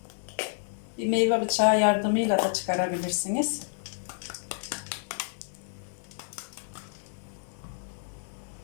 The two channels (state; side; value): silent; right; 58 dB below the other